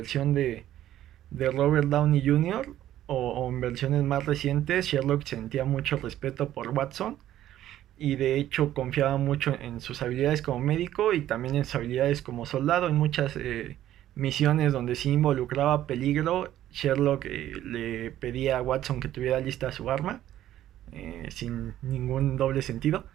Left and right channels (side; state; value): left; quieter; 12.7 dB